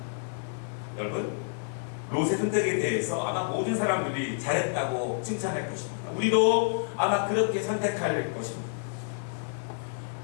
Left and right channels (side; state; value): right; silent; digital silence